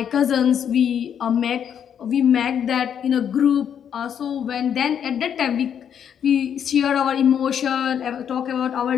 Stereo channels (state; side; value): quieter; right; 8.5 dB